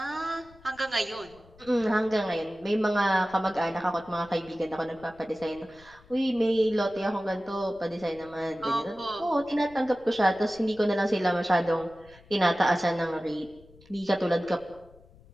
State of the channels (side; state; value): left; noise; rumble, 25 dB below the sound